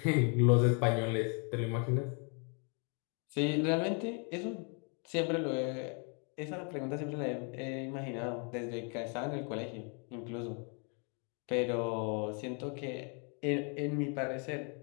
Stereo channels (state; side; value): quieter; right; 37.7 dB